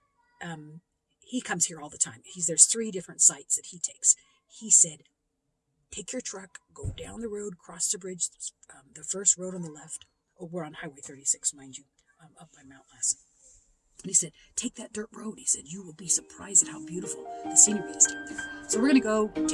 he comes here all the time. There's 3 different sites that he takes. He said, take your truck, go down the road, cross the bridge, the first road on the left. Oh, we're on Highway 36, mind you, up by Mount Lassen. And he said, take that dirt road. He said, you will be surprised at how beautiful the scenery is down there. So we're going to go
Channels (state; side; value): identical; both; correlation 1.00